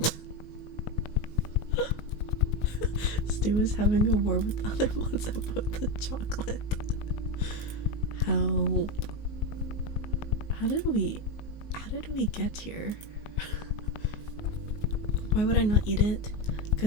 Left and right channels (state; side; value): late; right; 19 ms